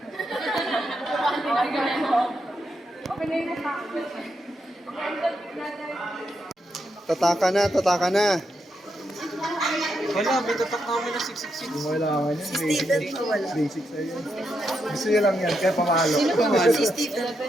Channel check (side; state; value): both; normal; correlation 0.82